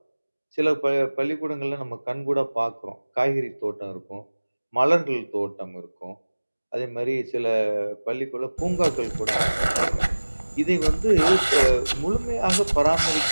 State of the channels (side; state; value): both; inverted; correlation -1.00